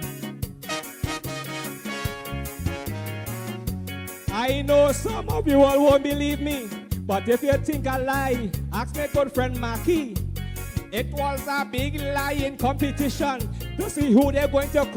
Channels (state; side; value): identical; both; correlation 1.00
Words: I know some of you all won't believe me, but if you think I lie, ask my good friend Mackie. It was a big lying competition to see who they're going to